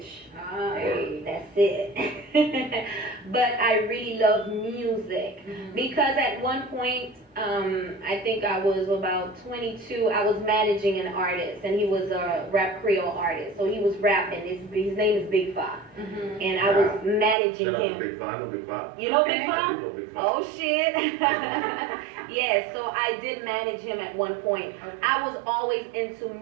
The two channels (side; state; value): left; drops out; at 17.4 s